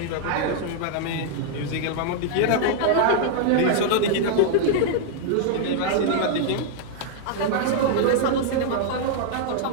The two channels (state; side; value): different; both; correlation -0.01